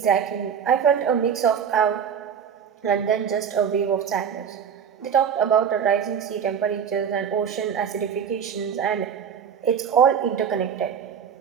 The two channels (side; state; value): left; quieter; 7.7 dB